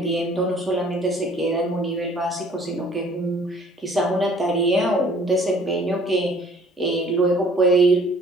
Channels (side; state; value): both; normal; correlation 0.55